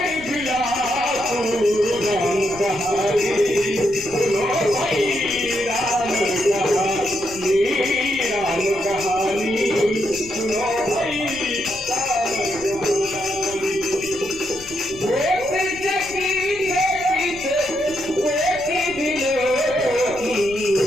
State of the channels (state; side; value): noise; left; rumble, 19 dB below the sound